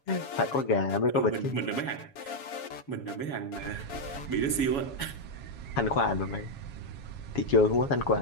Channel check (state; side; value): late; right; 7.2 ms